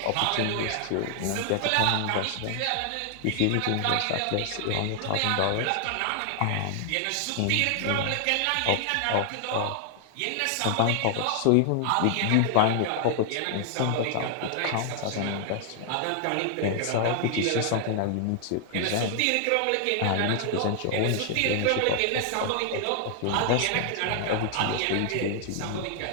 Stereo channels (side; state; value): both; different; correlation 0.00